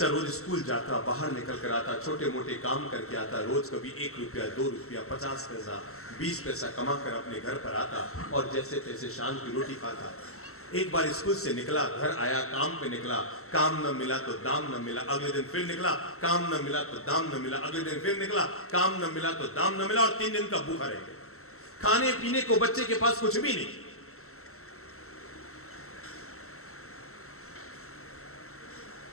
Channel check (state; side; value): late; right; 0.63 ms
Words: रोज स्कूल जाता, बाहर निकल कर आता, छोटे मोटे काम करके आता, रोज कभी 1 रुपया, 2 रुपया, 50 पैसा, 20 पैसा कमा कर अपने घर पर आता और जैसे तैसे शाम की रोटी खाता। एक बार स्कूल से निकला, घर आया, काम पे निकला, काम न मिला तो दाम न मिला, अगले दिन फिर निकला, काम न मिला तो दाम न मिला, अगले दिन फिर निकला, काम न मिला तो दाम न मिला, और 3 दिन का भूखा रह गया। खाने पीने को बच्चे के पास कुछ भी नहीं।